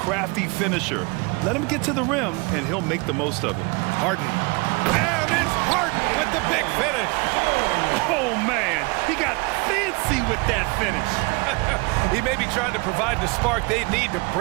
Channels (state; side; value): quieter; left; 27.6 dB